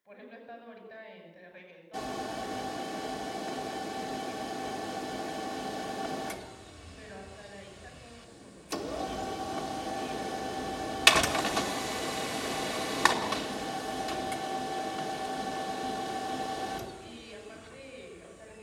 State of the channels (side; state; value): both; identical; correlation 1.00